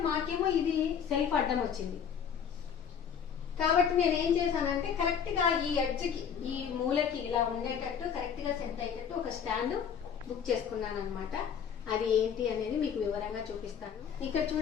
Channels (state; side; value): quieter; right; 7.6 dB